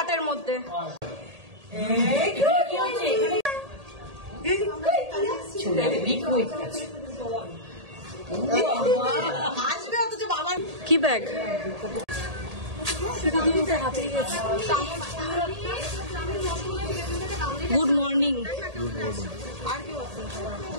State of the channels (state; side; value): late; left; 1.8 ms